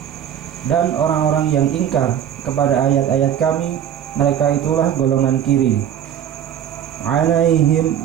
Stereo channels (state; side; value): quieter; left; 9.7 dB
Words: dan orang-orang yang ingkar kepada ayat-ayat kami, mereka itulah golongan kiri. Alaihim